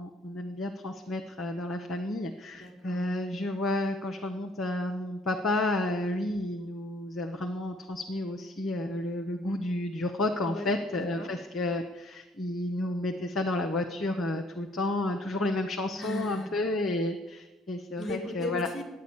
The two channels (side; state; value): both; normal; correlation 0.61